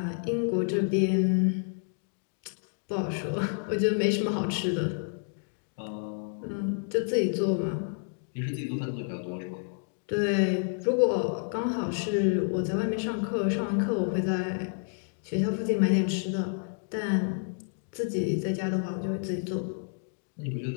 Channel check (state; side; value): silent; right; 58 dB below the other